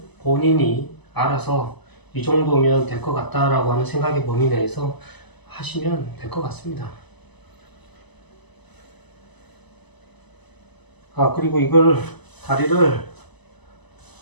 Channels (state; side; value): late; right; 0.99 ms